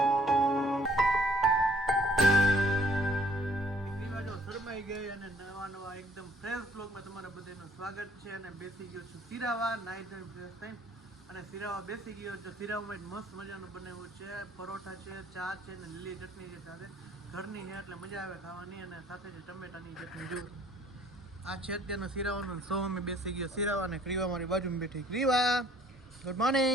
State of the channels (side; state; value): both; normal; correlation 0.59